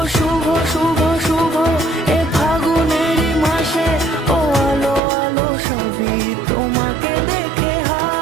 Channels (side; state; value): left; drops out; at 5.0 s